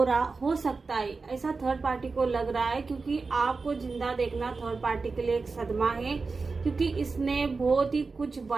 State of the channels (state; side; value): quieter; left; 4.2 dB